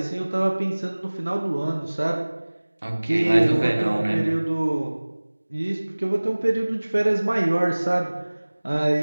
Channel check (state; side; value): inverted; both; correlation -1.00